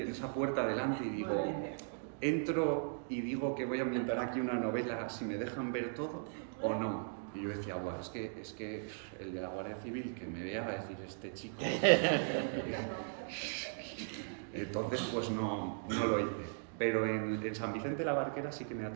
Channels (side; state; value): left; silent; digital silence